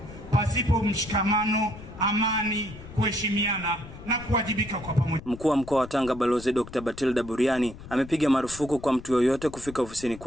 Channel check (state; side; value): noise; left; rumble, 15 dB below the sound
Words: pasipo mshikamano, amani, kuheshimiana na kuwajibika kwa pamoja. Mkuu wa mkoa wa Tanga Balozi Dr. Batilda Buriani amepiga marufuku kwa mtu yoyote kufika ofisini